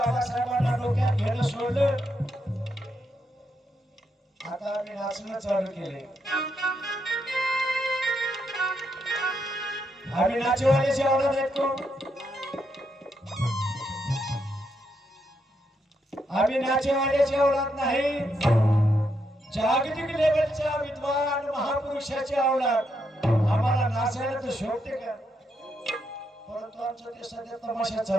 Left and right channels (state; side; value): normal; both; correlation 0.80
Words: डोक्यात घेणं सोडलं. आता आम्ही नाचणं चालू केले. आम्ही नाचेवाल्याची आवडत आहेत कोण? आम्ही नाचेवाल्याची आवडत नाही, जागतिक लेवलच्या विद्वान महापुरुषाची आवडत. आम्हाला नाचायला तर शोभते का? परंतु आमचं ते सध्या तमाशा